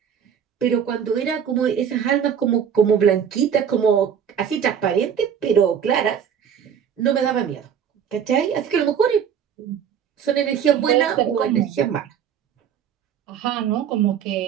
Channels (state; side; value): quieter; left; 8.2 dB